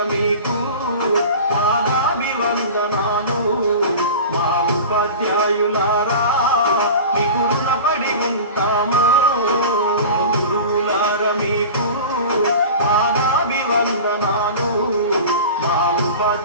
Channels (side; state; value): both; inverted; correlation -0.34